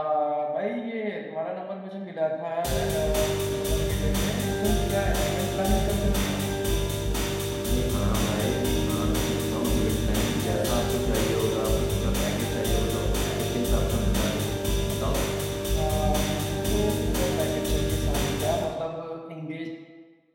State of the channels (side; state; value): both; identical; correlation 1.00